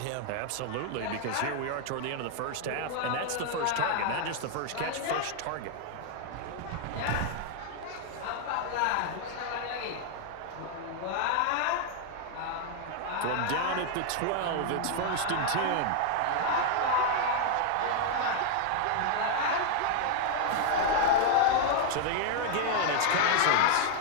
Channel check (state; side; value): different; both; correlation 0.00